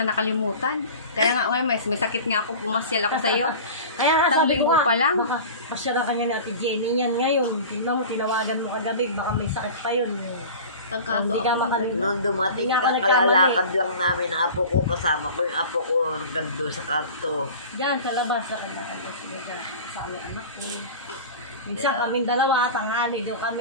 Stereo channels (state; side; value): inverted; both; correlation -0.36